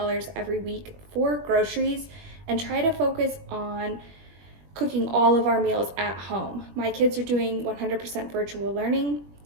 every week for groceries and try to focus on cooking all of our meals at home. My kids are doing 100% virtual learning,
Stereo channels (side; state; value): left; late; 21 ms